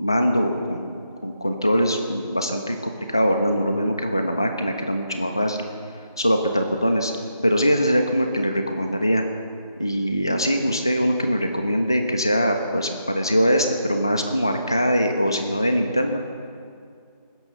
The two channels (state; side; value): inverted; both; correlation -0.82